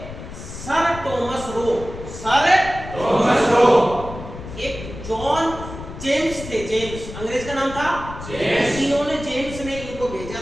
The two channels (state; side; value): noise; left; rumble, 11 dB below the sound